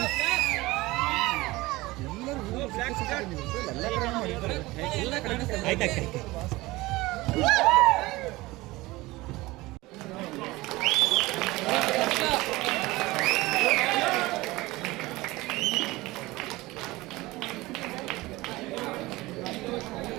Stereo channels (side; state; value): left; quieter; 20.3 dB